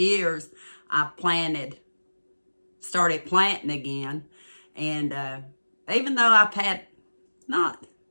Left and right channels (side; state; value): both; inverted; correlation -1.00